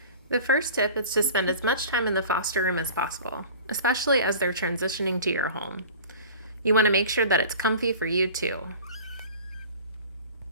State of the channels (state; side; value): inverted; both; correlation -0.40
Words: The first tip is to spend as much time in the foster room as possible, especially as they're transitioning to your home. You want to make sure that it's comfy for you too.